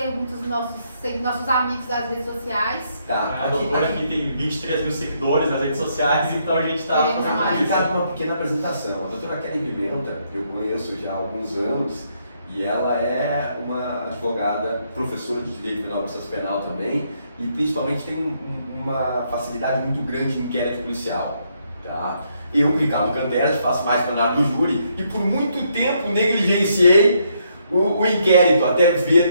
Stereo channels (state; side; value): inverted; both; correlation -0.74